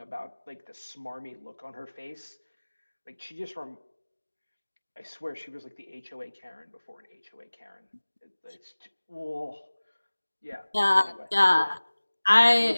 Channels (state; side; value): inverted; both; correlation -1.00